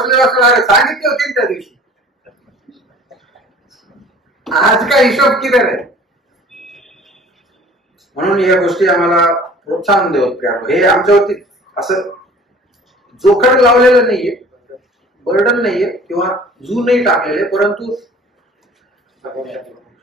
असेल. अरे सांगितली होती त्या दिवशी, आज काय हिशोब किती आहे? म्हणून या गोष्टी आम्हाला प्रोत्साहन देत. हे आमच्यावरती असं जोखड लावलेलं नाहीये, बर्डन नाहीये किंवा जू नाही टाकलेले, परंतु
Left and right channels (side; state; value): both; normal; correlation 0.47